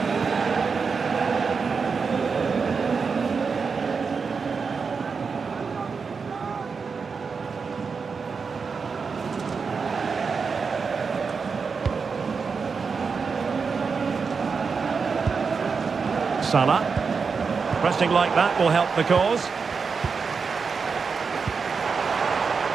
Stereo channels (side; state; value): left; quieter; 5.3 dB